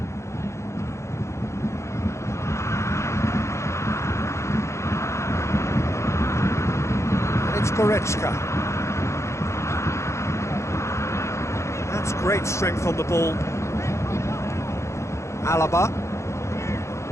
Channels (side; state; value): right; late; 0.14 ms